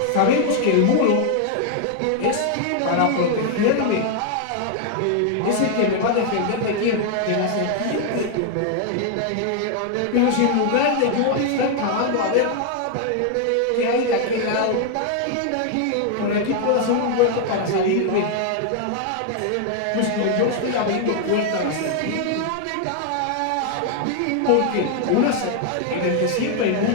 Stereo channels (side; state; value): both; different; correlation 0.00